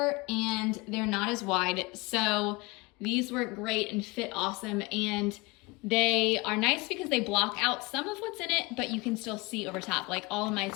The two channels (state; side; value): quieter; right; 24.8 dB